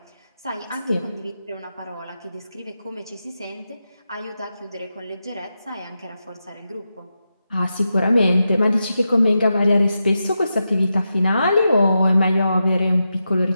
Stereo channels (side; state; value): both; inverted; correlation -0.89